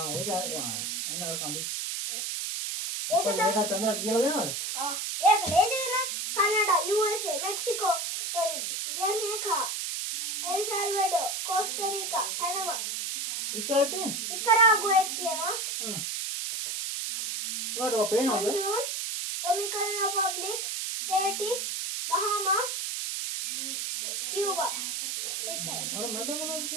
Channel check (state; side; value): noise; right; hiss, 2 dB below the sound